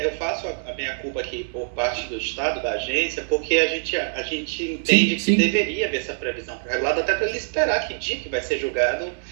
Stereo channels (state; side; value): silent; left; digital silence